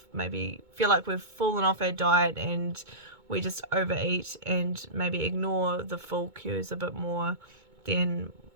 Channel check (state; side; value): late; left; 2.2 ms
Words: maybe feel like we've fallen off our diet and we just overeat and maybe ignore the full cues a bit more than